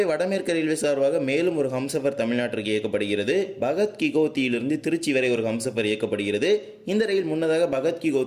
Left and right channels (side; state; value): both; identical; correlation 1.00